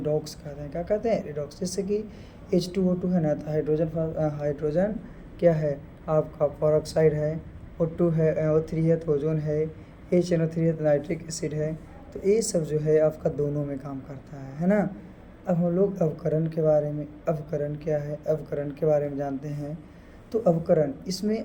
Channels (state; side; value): identical; both; correlation 1.00